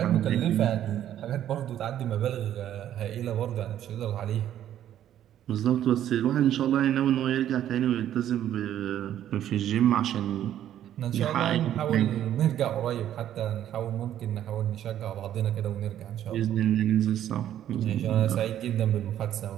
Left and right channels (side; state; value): left; quieter; 11.3 dB